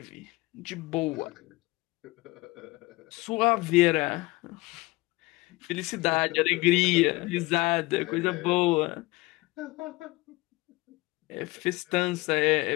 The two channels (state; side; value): quieter; right; 22.0 dB